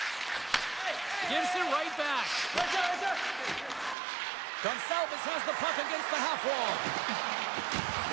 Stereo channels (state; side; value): drops out; left; at 4.0 s